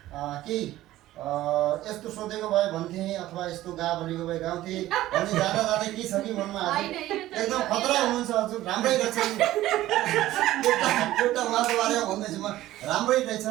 केही यस्तो सोधेको भए भन्थे अथवा यस्तो गा भनेको भए गाउँथे भन्ने जाँदा जाँदै के छ कि मनमा एकदम खतरा हुनुहुन्छ हजुर राम्रै रहेछन् एउटा उहाँको बारेमा भन्दैछु म राम्रै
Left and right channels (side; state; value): left; quieter; 15.2 dB